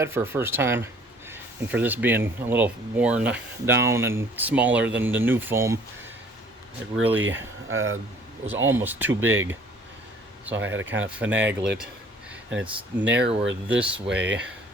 for a first time. And for this being a little worn down and smaller than the new foam, it really was almost too big. So I had to kind of finagle it. And it's narrower this way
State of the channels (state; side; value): normal; both; correlation 0.55